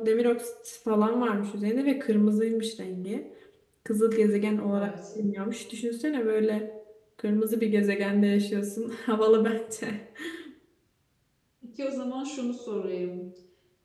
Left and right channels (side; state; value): both; identical; correlation 1.00